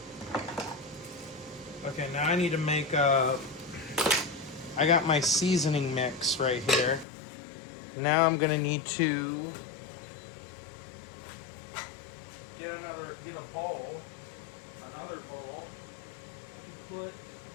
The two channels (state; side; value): drops out; right; at 7.1 s